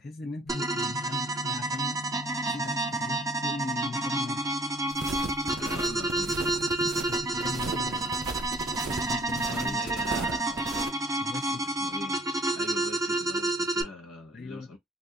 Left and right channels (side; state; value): both; normal; correlation 0.55